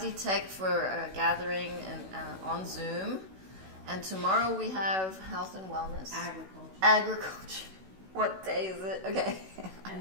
Tech for a gathering on Zoom. And tomorrow we have health and wellness. Agriculture. What day is it? Okay.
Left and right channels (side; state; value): left; late; 16 ms